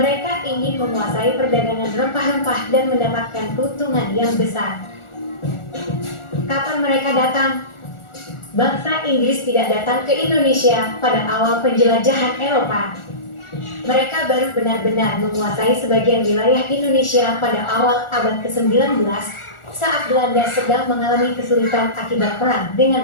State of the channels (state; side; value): late; right; 1.4 ms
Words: ingin menguasai perdagangan rempah-rempah dan mendapatkan keuntungan yang besar. Kapan mereka datang? Bangsa Inggris tidak datang ke Indonesia pada awal penjelajahan Eropa. Mereka baru benar-benar menguasai sebagian wilayah Indonesia pada awal abad ke-19 saat Belanda sedang mengalami kesulitan akibat perang